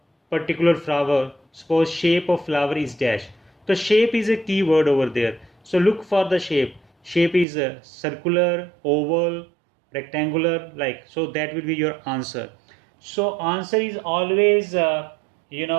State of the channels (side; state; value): left; drops out; at 7.5 s